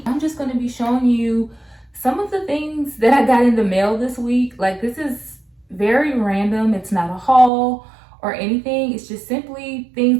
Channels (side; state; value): left; drops out; at 7.5 s